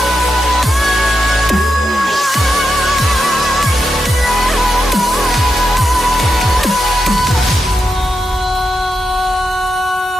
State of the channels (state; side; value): normal; both; correlation 0.86